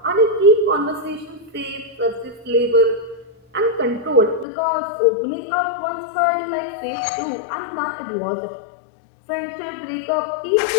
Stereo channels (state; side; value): drops out; right; at 4.5 s